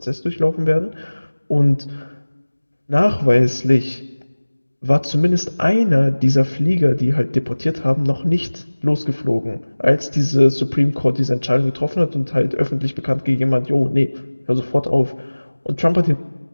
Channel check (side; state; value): both; inverted; correlation -1.00